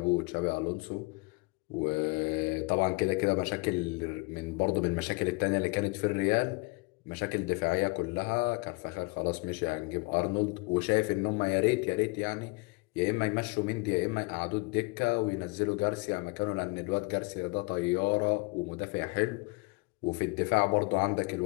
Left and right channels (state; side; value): quieter; right; 27.6 dB